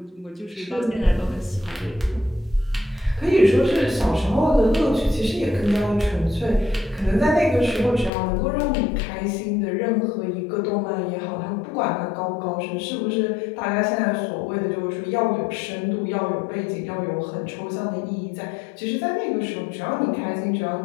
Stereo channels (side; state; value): right; drops out; at 8.1 s